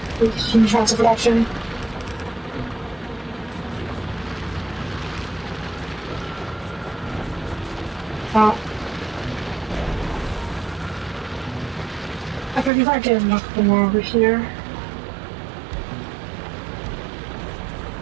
huge amounts of production. I think if I get a couple more over here.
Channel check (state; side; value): drops out; left; at 12.7 s